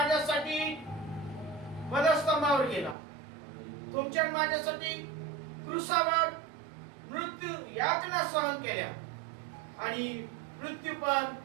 वधस्तंभावर गेला, तुमच्या आणि माझ्यासाठी क्रूसावर मृत्यू यातना सहन केल्या आणि मृत्यू पण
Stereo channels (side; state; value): left; drops out; at 3.0 s